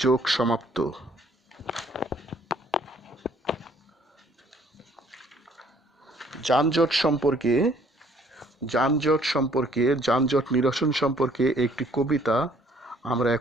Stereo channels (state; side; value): normal; both; correlation 0.61